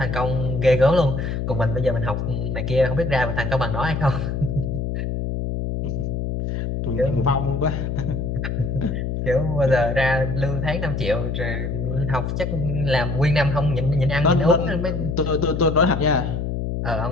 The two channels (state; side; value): noise; left; hum, 2 dB below the sound